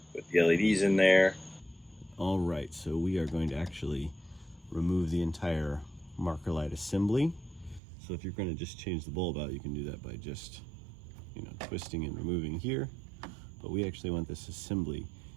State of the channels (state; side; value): drops out; left; at 7.8 s